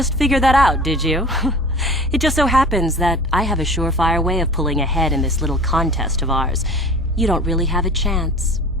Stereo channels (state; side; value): normal; both; correlation 0.41